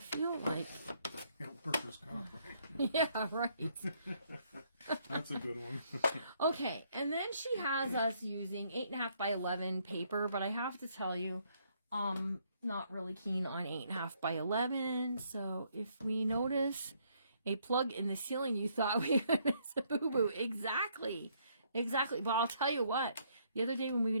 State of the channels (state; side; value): inverted; both; correlation -0.70